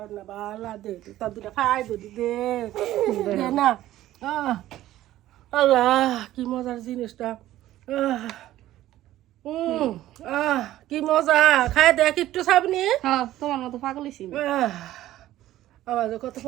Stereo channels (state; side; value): quieter; left; 14.3 dB